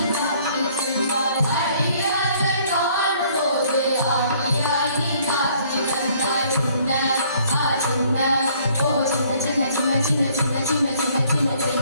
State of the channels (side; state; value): both; inverted; correlation -0.61